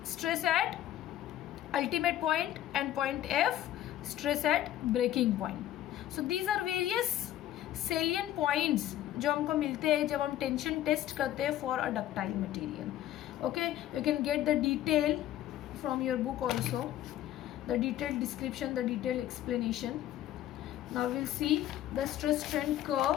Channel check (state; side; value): quieter; right; 12.9 dB